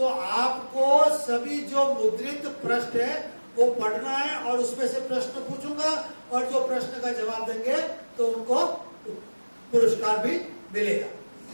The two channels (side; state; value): both; inverted; correlation -1.00